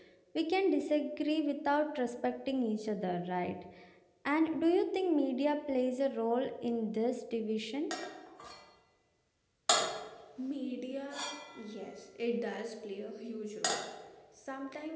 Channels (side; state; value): both; identical; correlation 1.00